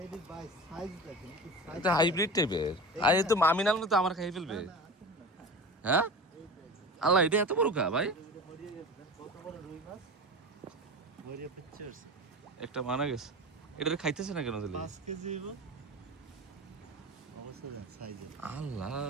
এদের বাই সাইজ দেখেন কি সাইজ এটা হাইব্রিড টাইপের। আর এ তো আমি নাম তো আমার খাই ফেলবে। হ্যাঁ আল্লাহ এটা এত বড় কা ভাই? কত বড় রুই মাছ ভরিয়ে পিকচার্স একটা মানা গেছে। এটা খাইতেছে না কেন তাহলে? 5 কেজি হইব অবশ্য সাইজে আল্লাহ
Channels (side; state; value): both; normal; correlation 0.31